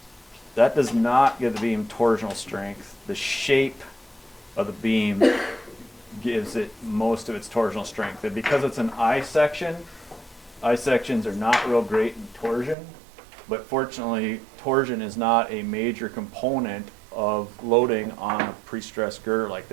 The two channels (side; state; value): left; drops out; at 12.8 s